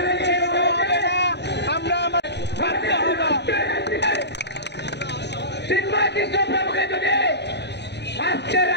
ছেড়ে দেওয়া হবে না, আমরা বাধ্য হব। চিন্ময় কৃষ্ণ প্রভুকে যদি আজকে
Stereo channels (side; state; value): right; late; 0.50 ms